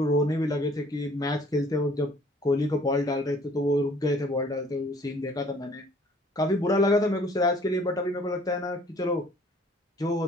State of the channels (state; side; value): normal; both; correlation 0.56